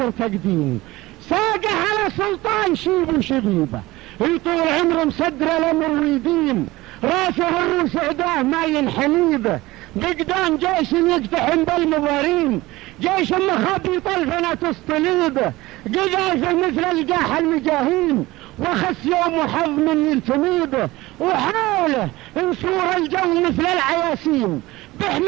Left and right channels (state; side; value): quieter; left; 19.2 dB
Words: تقديم. ساقه على سلطان شيب وشبيبه، يطول عمره مصدر الامر ويديم، راسه الروس عداه ما ينحنيبه، بقدام جيش يقتحم بالمضارين، جيش مخابي طلفنا تسطليبه، قذافه مثل الجاح المجاهين، وخس يوم وحظ من يلتميبه، وحاوله انصور الجو مثل العياسين،